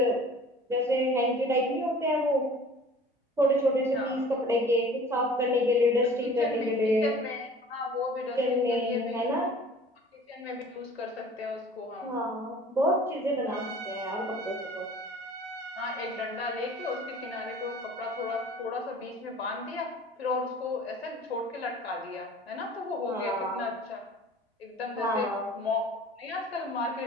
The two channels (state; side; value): normal; both; correlation 0.46